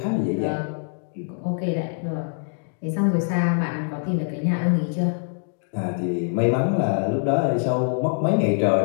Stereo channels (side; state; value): right; silent; digital silence